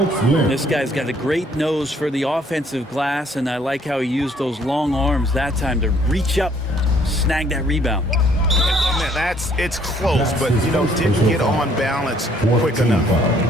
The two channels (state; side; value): normal; both; correlation 0.63